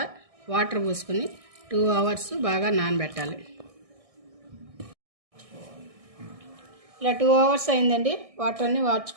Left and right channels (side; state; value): left; late; 1.6 ms